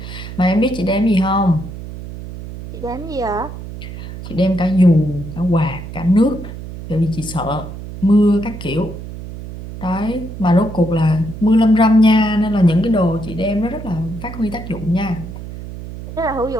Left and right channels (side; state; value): right; noise; hum, 11 dB below the sound